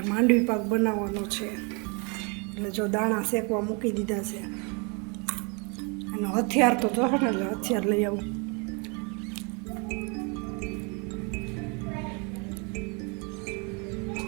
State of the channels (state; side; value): quieter; left; 33.0 dB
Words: માંડવી પાક બનાવવાનો છે એટલે જો દાણા શેકવા મૂકી દીધા છે. અને હથિયાર તો જોશે ને એટલે હથિયાર લઈ આવું.